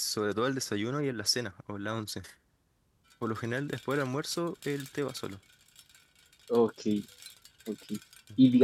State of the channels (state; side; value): identical; both; correlation 1.00